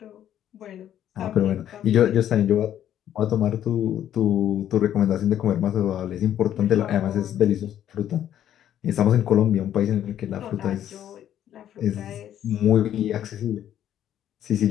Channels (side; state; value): right; quieter; 10.9 dB